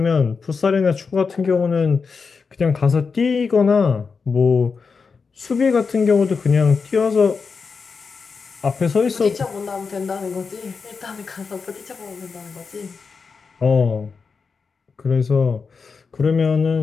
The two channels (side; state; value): right; quieter; 5.1 dB